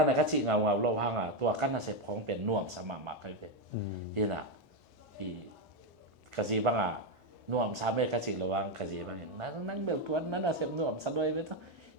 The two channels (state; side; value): normal; both; correlation 0.07